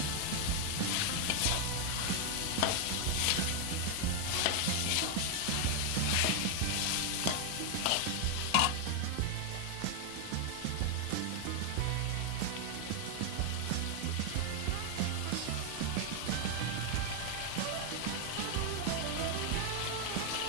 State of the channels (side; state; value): both; different; correlation 0.00